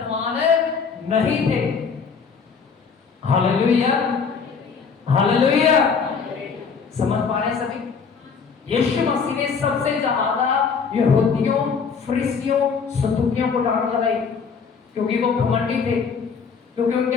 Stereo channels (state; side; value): quieter; right; 5.7 dB